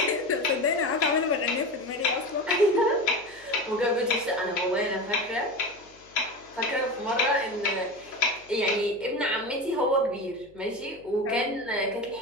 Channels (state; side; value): noise; left; hum, 29 dB below the sound